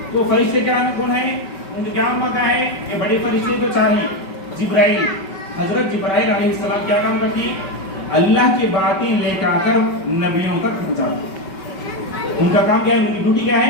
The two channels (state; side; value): late; right; 5.3 ms